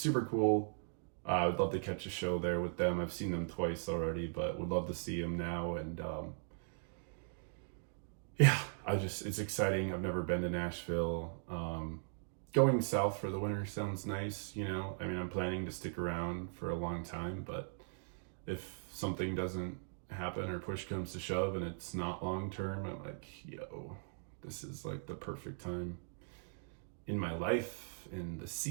cool. I would love to catch a show there with them. I've seen them twice already, but would love to see them now. And yeah, it's exciting. I've never been to Nashville. Going south for the winter sounds nice, you know. I mean, I'm planning to stick around for a long time, but if something doesn't happen or push comes to shove and it's not long term, I'm like, yo, this is like the perfect time in my life, in the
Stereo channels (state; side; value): silent; left; digital silence